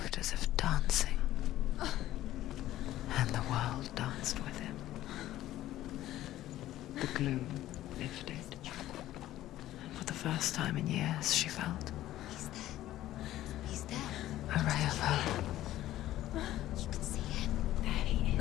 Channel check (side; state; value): right; quieter; 14.3 dB